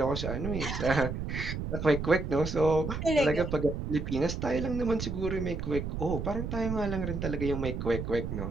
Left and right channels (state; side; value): noise; right; rumble, 4 dB below the sound